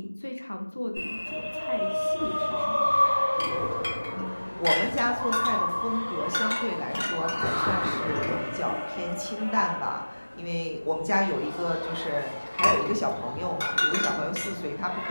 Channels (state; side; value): inverted; both; correlation -1.00